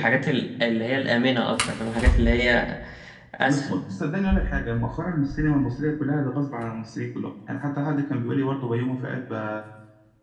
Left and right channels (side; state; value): both; identical; correlation 1.00